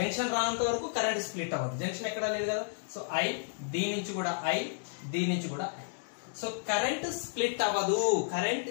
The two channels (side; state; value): right; silent; digital silence